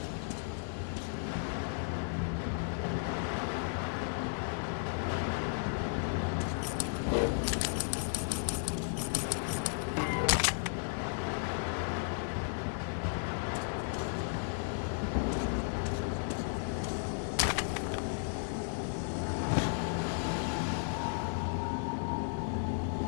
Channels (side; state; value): right; silent; digital silence